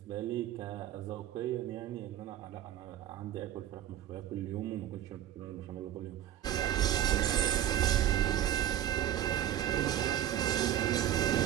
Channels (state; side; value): quieter; left; 11.5 dB